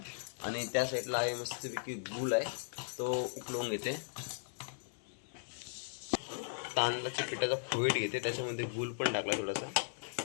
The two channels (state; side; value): silent; right; 53 dB below the other